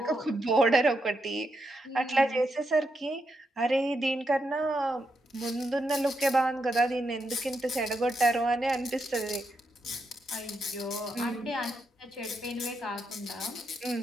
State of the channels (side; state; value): both; normal; correlation 0.82